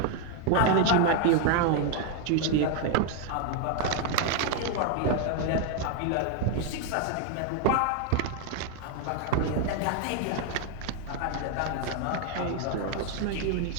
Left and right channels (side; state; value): both; different; correlation 0.01